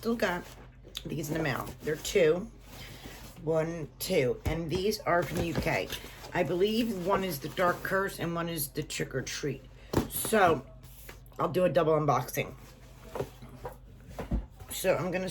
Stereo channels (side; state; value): both; identical; correlation 1.00